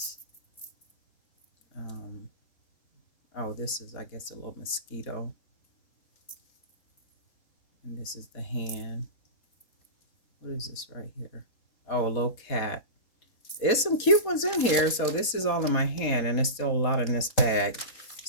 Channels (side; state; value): right; late; 4.2 ms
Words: Oh, this is, I guess, a little mosquito. And this is the hand. What is this right here? Oh, a little cat. There's some cute ones in here. So this is all in my hand, and there's still a lot in this bag.